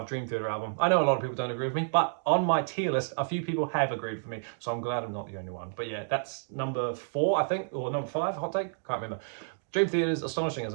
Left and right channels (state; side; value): silent; left; digital silence